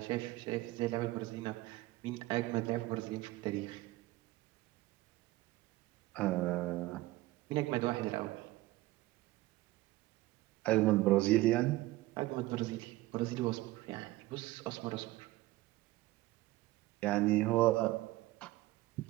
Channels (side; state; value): left; quieter; 18.4 dB